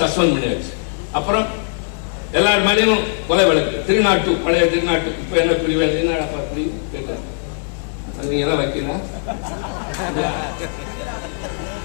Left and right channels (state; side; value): silent; right; 63 dB below the other